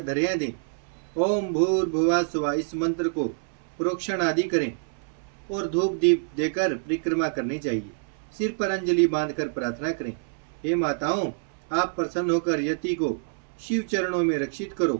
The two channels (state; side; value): silent; left; 61 dB below the other